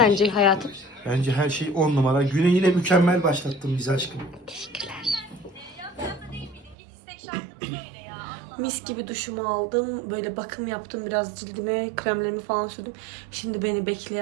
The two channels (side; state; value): left; drops out; at 6.8 s